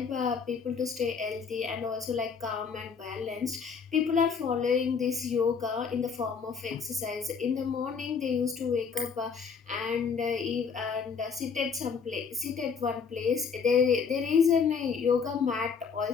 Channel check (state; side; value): quieter; right; 5.9 dB